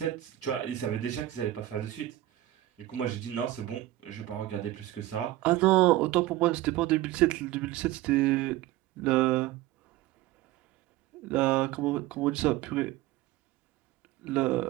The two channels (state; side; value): quieter; left; 15.5 dB